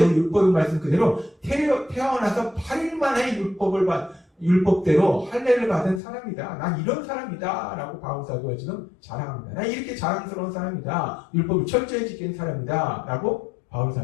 율법의 말씀 그대로 태어나서 8일 만에 율법대로 할례를 받은 사람이다. 난 이런 사람이다. 라고 바울 사도가 지금 자랑합니다. 난 이렇게 자랑스러운 사람이다. 율법을 철저히 지키는 사람이다. 라고 바울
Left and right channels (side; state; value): right; drops out; at 6.0 s